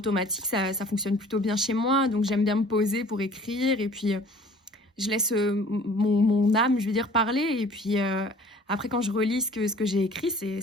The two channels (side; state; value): both; normal; correlation 0.50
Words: ça fonctionne plutôt bien chez moi. Donc j'aime bien me poser pour écrire et puis je laisse mon âme, je veux dire, parler. Et puis après, quand je relis ce que j'ai écrit,